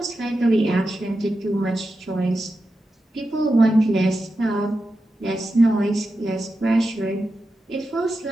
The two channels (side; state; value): both; normal; correlation 0.90